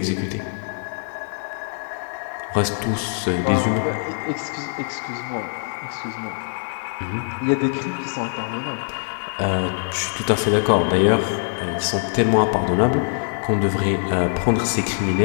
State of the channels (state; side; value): silent; right; digital silence